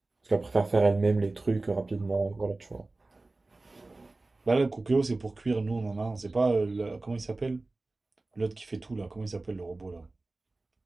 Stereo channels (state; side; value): quieter; left; 3.2 dB